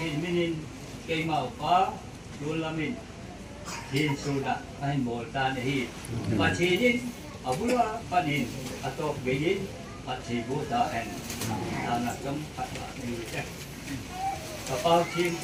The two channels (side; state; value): both; identical; correlation 1.00